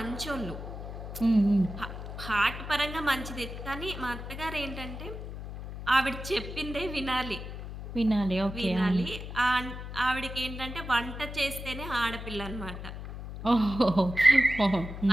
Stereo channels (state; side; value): noise; left; hum, 9 dB below the sound